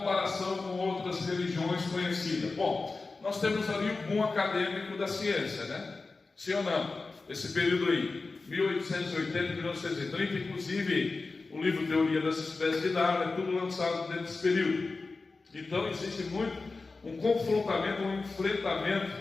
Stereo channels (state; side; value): quieter; right; 3.8 dB